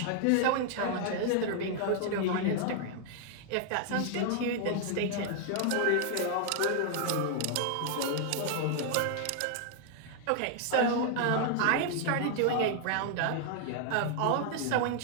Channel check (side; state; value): both; different; correlation 0.00